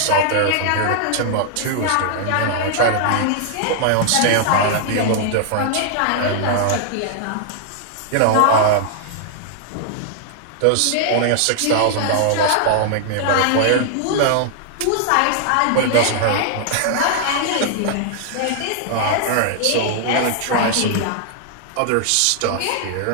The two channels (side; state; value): both; different; correlation 0.00